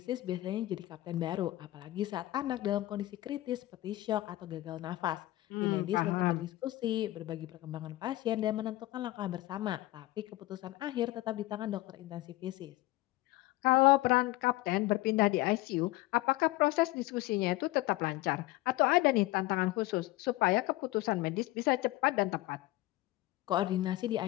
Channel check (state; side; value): quieter; right; 17.8 dB